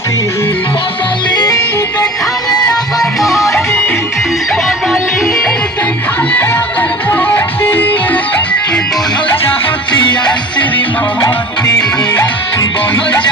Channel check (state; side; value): normal; both; correlation 0.41